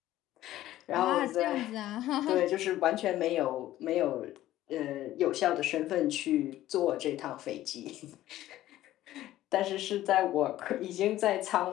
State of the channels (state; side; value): quieter; right; 14.4 dB